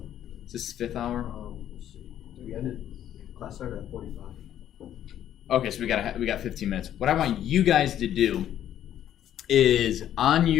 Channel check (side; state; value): right; quieter; 11.1 dB